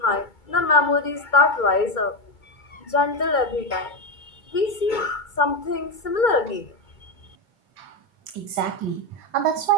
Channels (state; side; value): late; right; 2.2 ms